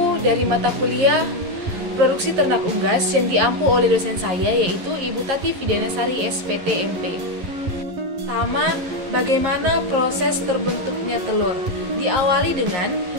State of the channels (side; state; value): left; late; 11 ms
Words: dari mata kuliah Produksi Ternak Unggas yang diampu oleh dosen saya, yaitu Ibu Tati Fidianasari SPT MP. Pertama, bagaimana proses terbentuknya telur? Diawali dengan